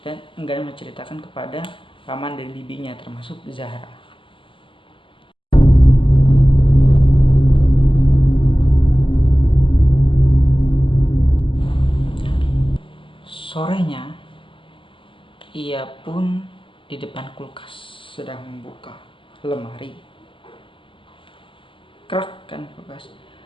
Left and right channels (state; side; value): late; right; 0.25 ms